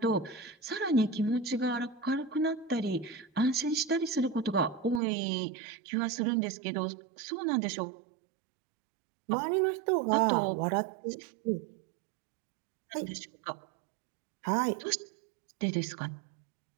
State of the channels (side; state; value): left; drops out; at 5.0 s